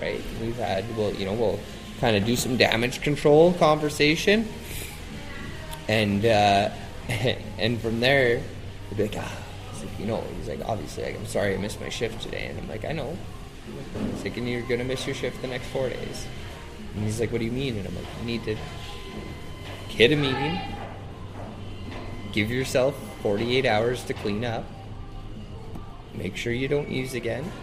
We'll kind of do some damage control conversation. And and from there, he'll be like, he's like, "Obviously, I'm sorry I missed my shift today." And I'm like, "I know." He's like, "And you're going to miss your shift the next 4 days." And he's like, "What do you mean?" And I'm like, "You need to hit a meeting, give yourself 48 hours to clean up, make sure you don't use again,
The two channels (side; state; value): both; identical; correlation 1.00